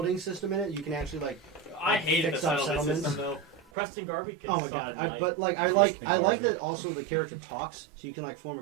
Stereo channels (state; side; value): drops out; left; at 3.6 s